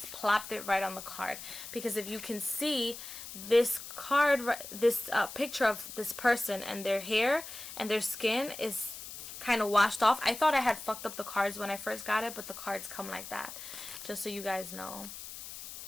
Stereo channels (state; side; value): noise; left; hiss, 11 dB below the sound